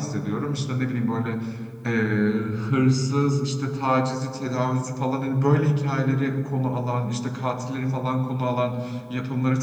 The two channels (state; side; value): identical; both; correlation 1.00